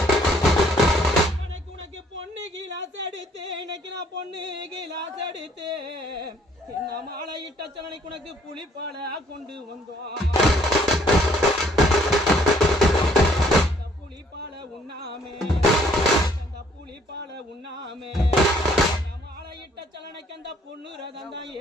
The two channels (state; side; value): normal; both; correlation 0.63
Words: உனக்கு பொண்ணு கிளாஸ் எடுத்து இன்னைக்கு நான் பொண்ணு கிளாஸ் எடுத்து என்ன மாலை இட்ட சலனைக்கு உனக்கு புளிப்பால கொண்டு வந்தோம் புளிப்பால உண்ணாமே அந்த புளிப்பால உண்ணாமே மாலை இட்ட சலனைக்கு அந்த பொண்ணு ரதம் தான்